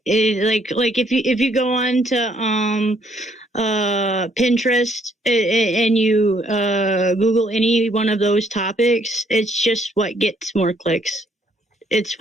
like if you go on to Pinterest and you Google any one of those topics, it's just what gets more clicks. It's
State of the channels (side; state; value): both; normal; correlation 0.67